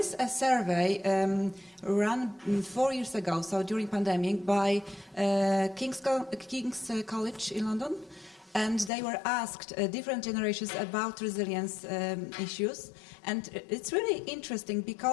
a survey run 4 years ago, so during pandemic, by King's College in London, and they were asked different generations about resilience issues, and it's really interesting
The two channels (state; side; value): drops out; right; at 8.9 s